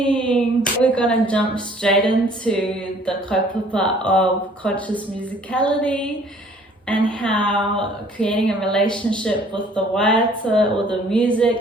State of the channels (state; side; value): normal; both; correlation 0.56